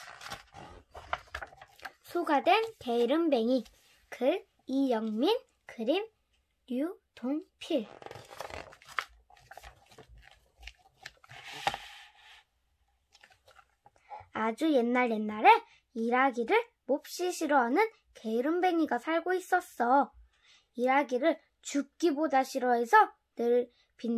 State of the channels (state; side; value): identical; both; correlation 1.00